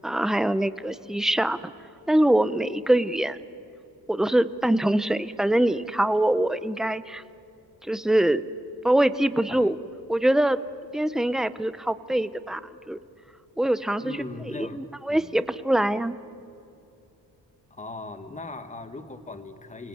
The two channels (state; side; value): normal; both; correlation 0.94